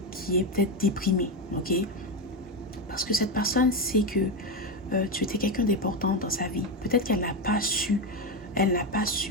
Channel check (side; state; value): both; normal; correlation 0.12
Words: qui est peut-être déprimé. Ok? Parce que cette personne sait que tu étais quelqu'un d'important dans sa vie. Peut-être qu'elle n'a pas su,